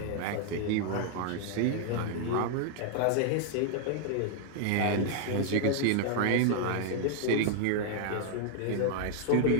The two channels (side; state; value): both; different; correlation 0.00